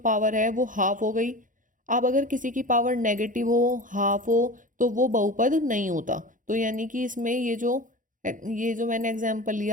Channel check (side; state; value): left; late; 0.38 ms